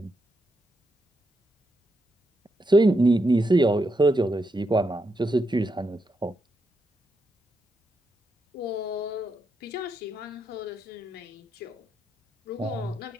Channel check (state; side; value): normal; both; correlation 0.82